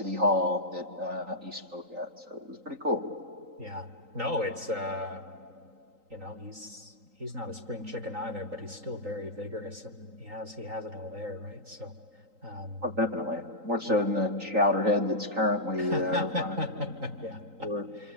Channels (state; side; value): late; left; 3.9 ms